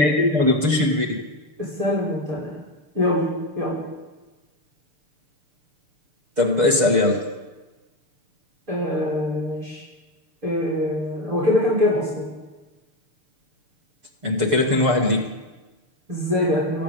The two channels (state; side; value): late; left; 6.7 ms